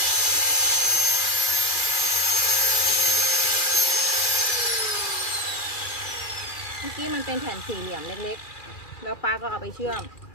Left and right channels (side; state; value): right; late; 2.4 ms